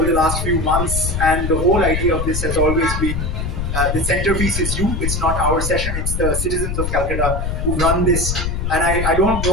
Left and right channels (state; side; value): noise; left; rumble, 2 dB below the sound